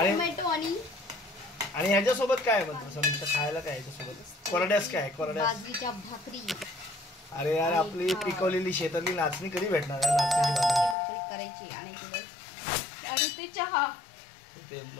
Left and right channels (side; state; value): right; drops out; at 11.0 s